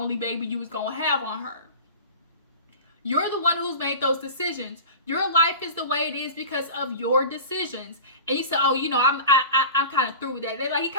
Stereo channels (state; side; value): inverted; both; correlation -0.34